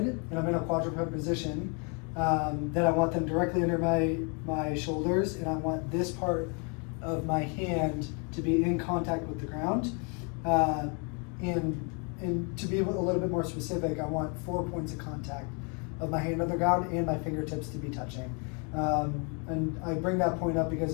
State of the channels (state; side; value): quieter; right; 35.6 dB